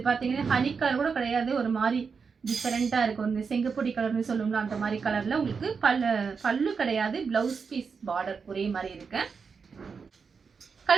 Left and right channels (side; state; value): left; quieter; 5.5 dB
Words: பாத்தீங்கன்னா ஹனி கலர் கூட கிடையாது, ஒரு மாதிரி டிஃபரெண்டா இருக்கும். இந்த செங்கப்பொடி கலர்னு சொல்லுவோம்ல, அந்த மாதிரி கலர்ல உங்களுக்கு பல்லு கிடையாது, பிளவுஸ் பீஸ் பார்டர் ஒரே மாதிரி இருக்கு.